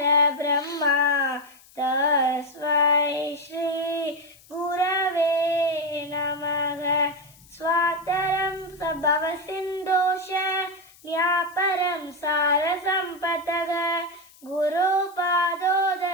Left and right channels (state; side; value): noise; left; hiss, 26 dB below the sound